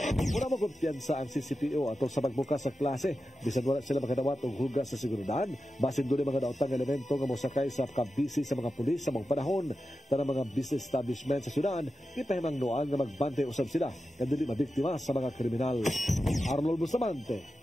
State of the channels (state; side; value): normal; both; correlation 0.91